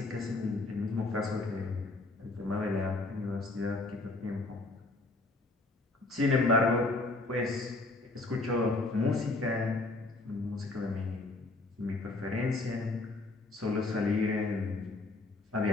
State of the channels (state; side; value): quieter; right; 3.1 dB